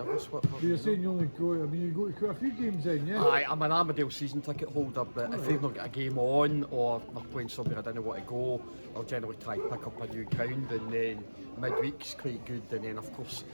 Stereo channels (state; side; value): inverted; both; correlation -1.00